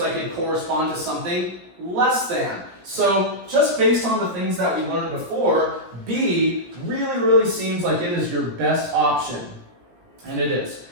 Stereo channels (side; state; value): left; late; 17 ms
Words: it corresponds to something less than. So just based on the things that we learned before, B really seems like it is your best option. And it is.